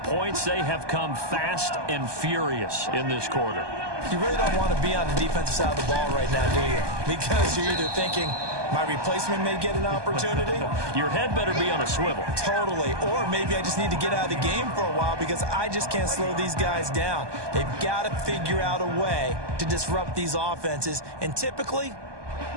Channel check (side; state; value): left; late; 1.2 ms